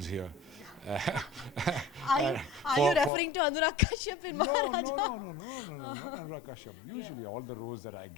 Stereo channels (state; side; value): drops out; right; at 3.1 s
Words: here. Are you referring to Anurag Kashyap in No, Maharaja? not Anurag Kashyap. Usually all the roles that I